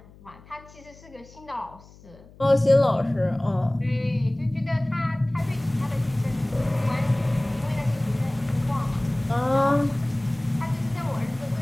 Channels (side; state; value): left; noise; hum, 23 dB below the sound